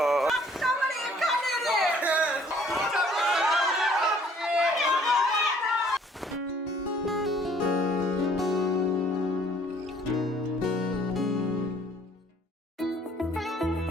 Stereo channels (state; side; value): normal; both; correlation 0.58